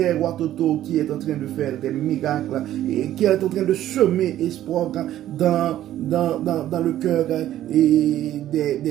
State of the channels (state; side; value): quieter; left; 12.7 dB